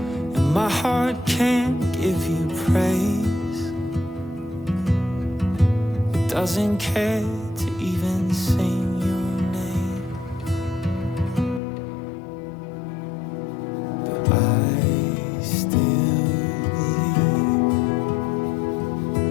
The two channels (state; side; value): drops out; right; at 11.6 s